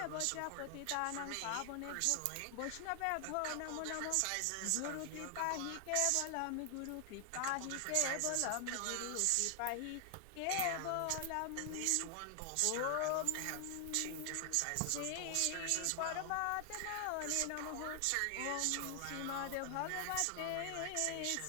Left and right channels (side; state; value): both; different; correlation 0.00